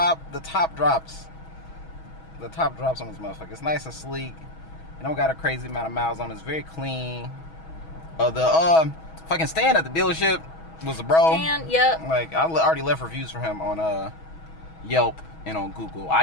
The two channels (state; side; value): late; right; 6.2 ms